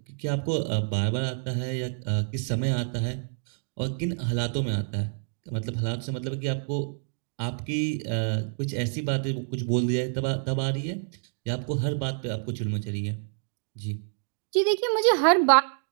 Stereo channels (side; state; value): left; silent; digital silence